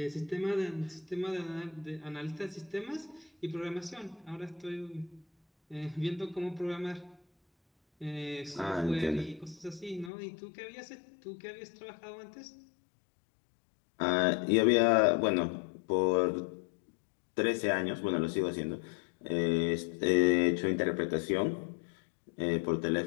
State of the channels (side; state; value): right; drops out; at 10.1 s